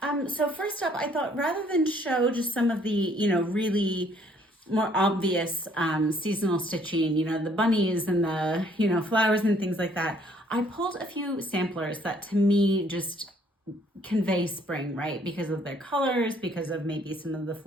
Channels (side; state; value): both; normal; correlation 0.63